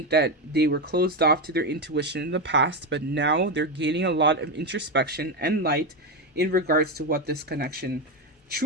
that they were closed off to their intuition in the past, but now they're gaining a lot of introspection and light in regards to what this connection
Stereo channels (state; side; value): normal; both; correlation 0.11